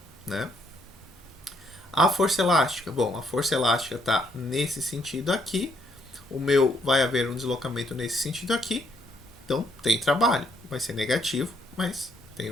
né? A força elástica, bom, a força elástica está nesse sentido aqui, o meu vai haver um deslocamento nesse sentido aqui, então tem trabalho, vai ser negativo, mas tem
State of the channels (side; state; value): both; normal; correlation 0.71